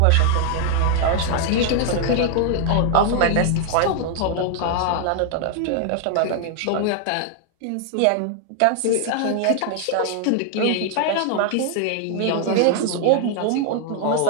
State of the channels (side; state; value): both; different; correlation 0.00